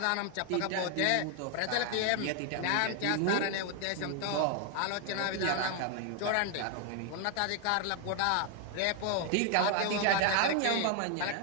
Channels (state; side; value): different; both; correlation 0.01